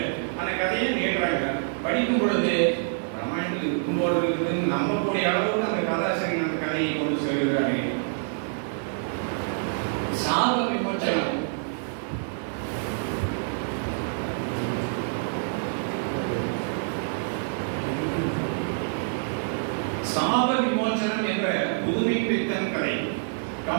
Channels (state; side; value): silent; left; 58 dB below the other